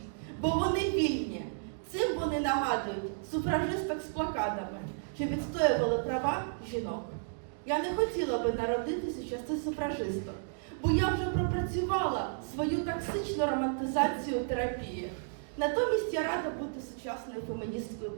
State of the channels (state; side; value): silent; left; digital silence